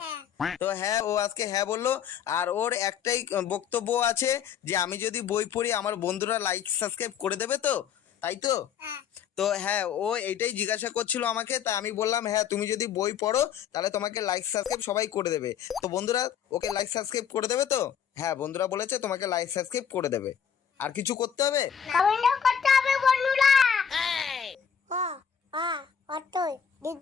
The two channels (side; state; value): right; quieter; 7.9 dB